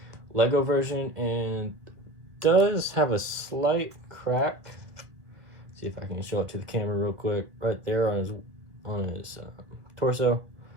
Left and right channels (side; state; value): left; late; 1.7 ms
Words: LEGO version and does have a slight crack. See if I can show it to the camera real quick. Right there on his torso.